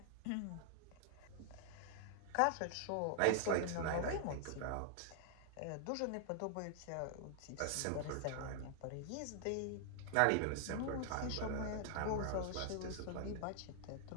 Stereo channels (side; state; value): both; different; correlation 0.00